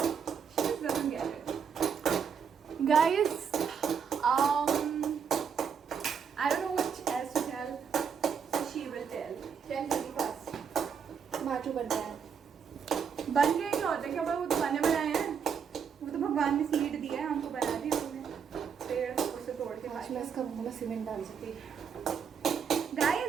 She just doesn't get it, guys. I don't know what else to tell, so she will tell. Tell me first. Machu बन रहा है. बन गए क्या होता है? क्या वो तो बने बनाए हैं? वो तो भगवान ने सीड दिया है, हमको बना दिया उन्होंने. पेड़ उसे तोड़ के आज मैं इसका मुंह में सीमेंट डाल सकती.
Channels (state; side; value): quieter; left; 6.9 dB